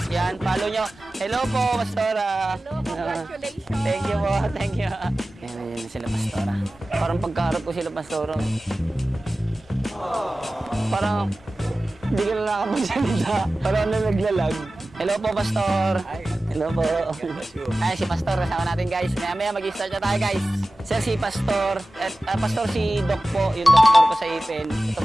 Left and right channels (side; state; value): both; normal; correlation 0.96